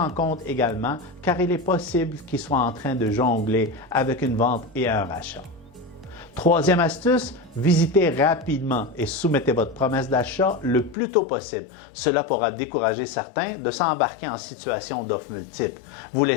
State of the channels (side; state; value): right; drops out; at 11.0 s